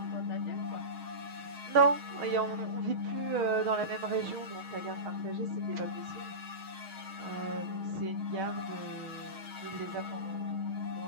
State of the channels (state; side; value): late; left; 6.4 ms